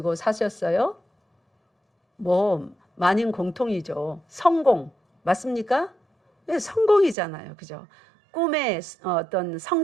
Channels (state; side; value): drops out; left; at 7.2 s